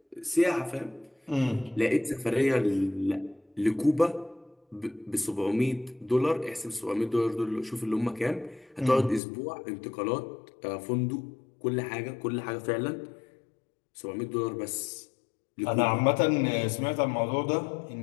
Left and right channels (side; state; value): right; drops out; at 9.2 s